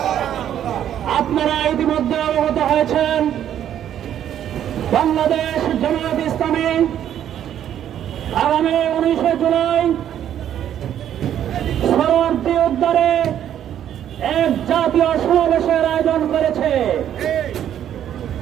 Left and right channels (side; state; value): left; quieter; 10.4 dB